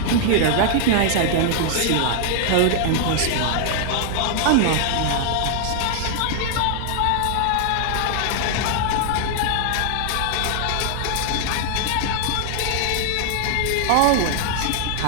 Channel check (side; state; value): both; different; correlation 0.00